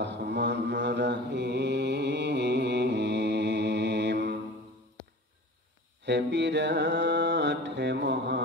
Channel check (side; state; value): both; normal; correlation 0.38